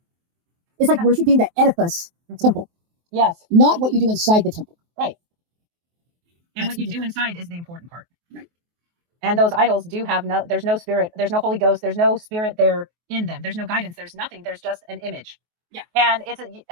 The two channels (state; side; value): late; left; 23 ms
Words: It's like worshiping the edifice temple. Yes. Not what you do inside the temple. Right. And what you do inside is the important part. Right. And those idols do have there's no spirit, there's no Holy Ghost, there's no spirit there in them. There's no guidance, there's nothing. There's just an image. Yeah. And it's